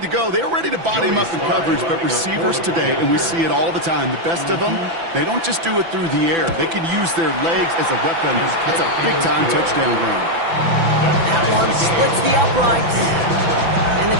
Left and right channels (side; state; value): left; late; 6.0 ms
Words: go. They were ready to body him up in coverage, but receivers today, and we see it all the time, the best of them, they don't just do it through the air. They can use their legs as a weapon. That's a big-time touchdown run. That one splits the uprights. And the